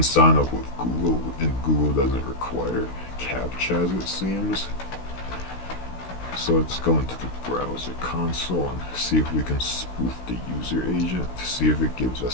sign up with Google, and Google doesn't require CAPTCHAs, it seems. So let's go into the browser console and see if we can spoof the user agent to see if it gives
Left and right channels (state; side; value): late; right; 16 ms